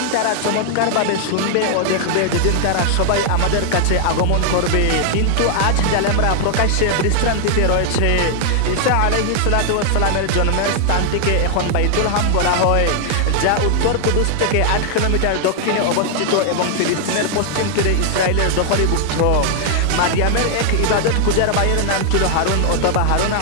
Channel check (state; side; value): different; both; correlation 0.00